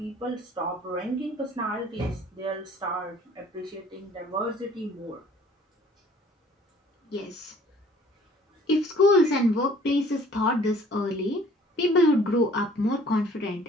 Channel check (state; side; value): normal; both; correlation 0.54